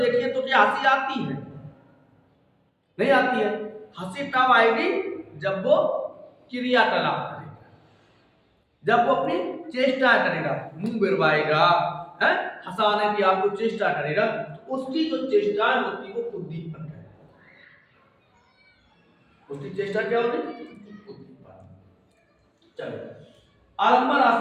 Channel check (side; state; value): both; identical; correlation 1.00